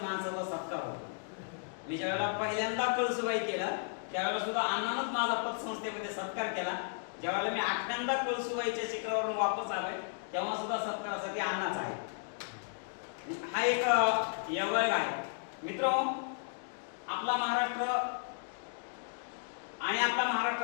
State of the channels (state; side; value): silent; right; digital silence